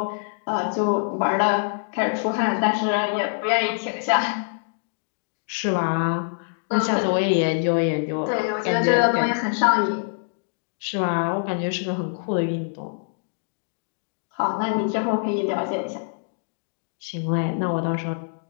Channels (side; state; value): right; silent; digital silence